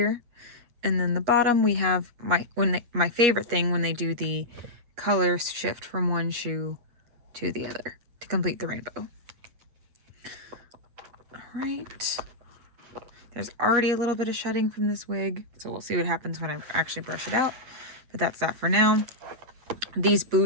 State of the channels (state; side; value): late; left; 8.4 ms